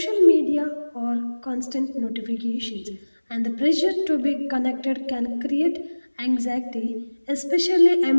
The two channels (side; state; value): both; inverted; correlation -1.00